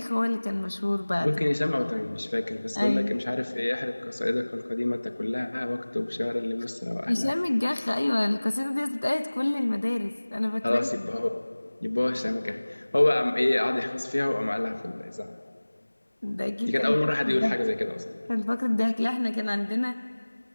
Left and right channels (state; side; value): inverted; both; correlation -1.00